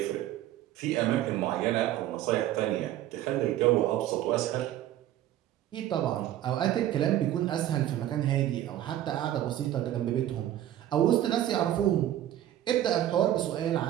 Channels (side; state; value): left; quieter; 12.7 dB